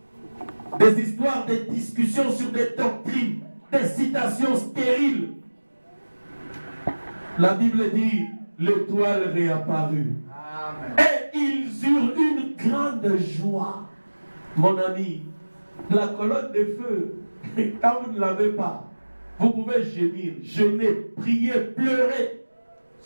des histoires, des discussions sur des doctrines, des citations stériles, la Bible dit, l'étoile réapparut. Amen. Et ils eurent une grande joie. Mon ami, la colonne de feu, quand vous ne l'avez pas, vous pouvez gémir, jeûner, prier, pleurer.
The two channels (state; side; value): inverted; both; correlation -1.00